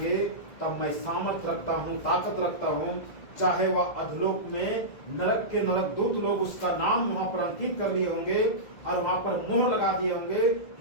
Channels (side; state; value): right; late; 1.8 ms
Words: तब मैं सामर्थ रखता हूँ, ताकत रखता हूँ। चाहे वह अधलोक में नरक के नरक दूत लोग उसका नाम वहां पर अंकित कर लिए होंगे और वहां पर मोहर लगा दिए होंगे,